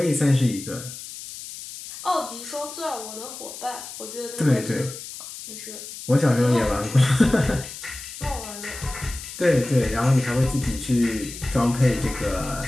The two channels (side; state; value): left; noise; hiss, 12 dB below the sound